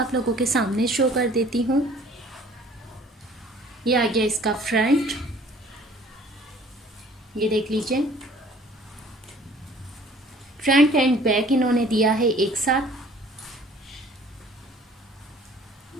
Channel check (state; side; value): normal; both; correlation 0.53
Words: लोगों के सामने शो कर देती हूँ। ये आ गया इसका फ्रंट, ये देख लीजिए। फ्रंट एंड बैक इन्होंने दिया है एक साथ।